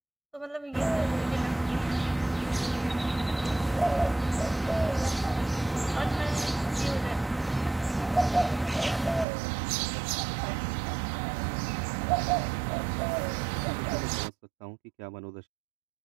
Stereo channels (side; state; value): left; drops out; at 9.2 s